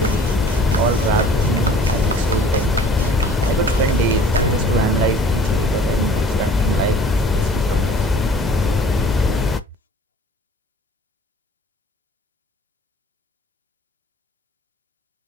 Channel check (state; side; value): normal; both; correlation 0.50